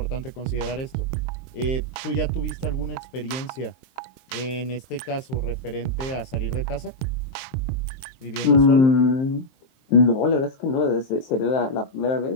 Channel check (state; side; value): late; right; 23 ms